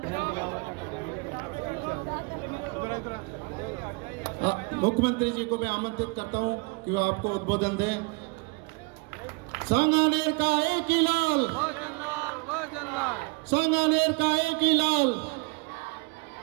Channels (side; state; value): left; quieter; 29.1 dB